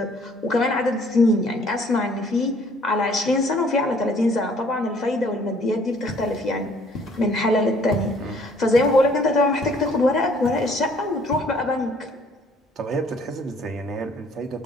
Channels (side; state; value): both; normal; correlation 0.59